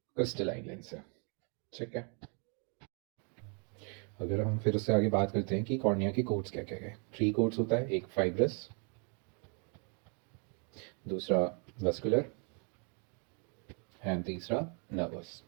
क्रिस्टलाइन लेंस है। ठीक है। अगर हम फिर उससे आगे बात करते हैं कि कॉर्निया के कोड्स क्या क्या है, 3 कोड्स होता है, एक फाइब्रस, दूसरा वस्कुलर एंड तीसरा नर्वस।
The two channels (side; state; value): left; quieter; 37.6 dB